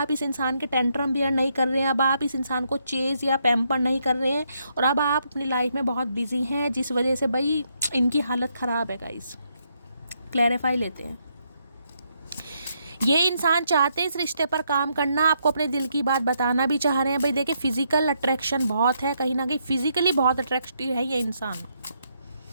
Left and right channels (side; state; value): both; inverted; correlation -0.76